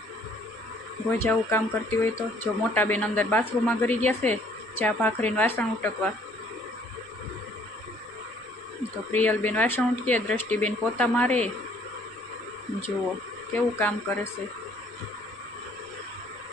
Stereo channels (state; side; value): noise; right; rumble, 28 dB below the sound